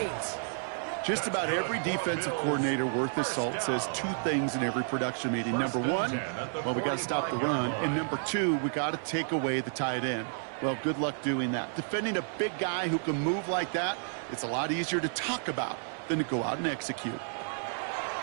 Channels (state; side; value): silent; left; 57 dB below the other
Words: Just about every defensive coordinator worth his salt says 2 things in every production meeting. Number 1, well, we got to stop the run. And number 2, we got to take away the tight end. Well, good luck doing that. Defending a big guy who can move like that, it's a lot easier to talk about than to go out and execute.